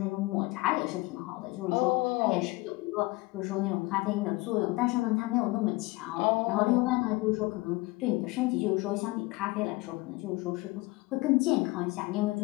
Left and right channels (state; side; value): quieter; right; 22.7 dB